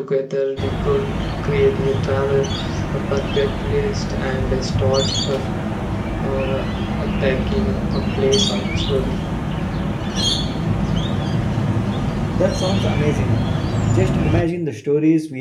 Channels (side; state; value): both; identical; correlation 1.00